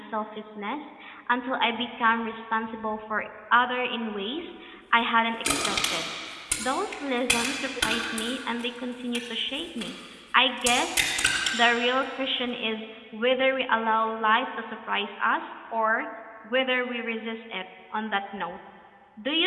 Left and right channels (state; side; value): identical; both; correlation 1.00